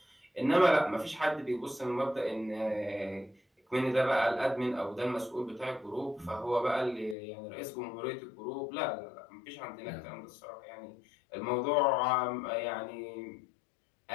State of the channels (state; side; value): drops out; right; at 7.2 s